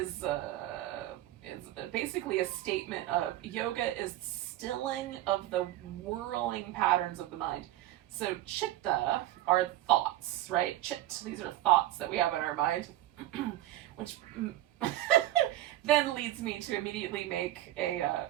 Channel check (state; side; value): quieter; left; 14.8 dB